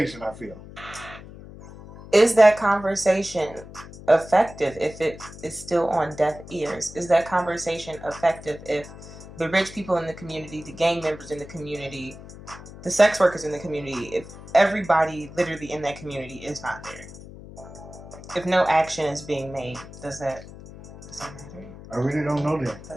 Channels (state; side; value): noise; left; hum, 16 dB below the sound